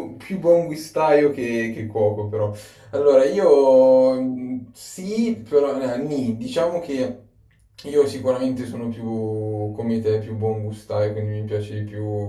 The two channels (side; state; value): both; identical; correlation 1.00